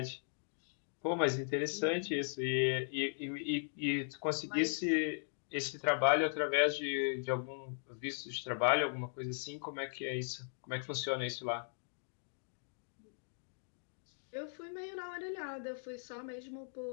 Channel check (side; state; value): right; silent; digital silence